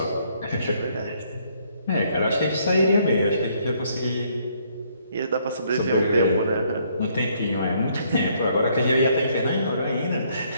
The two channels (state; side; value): inverted; both; correlation -0.68